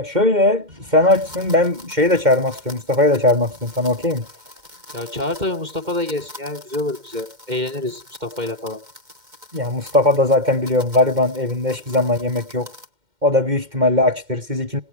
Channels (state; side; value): late; left; 2.1 ms